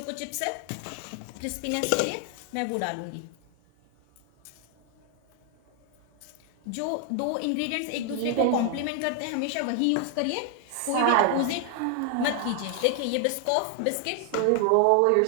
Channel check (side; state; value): both; different; correlation 0.00